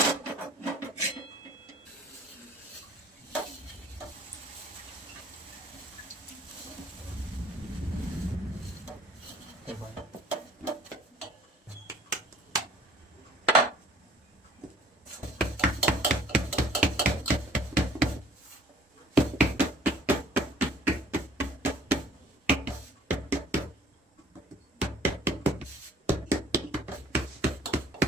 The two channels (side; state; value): both; normal; correlation 0.54